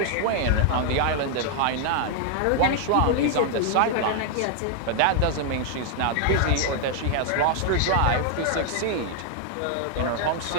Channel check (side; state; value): both; different; correlation 0.00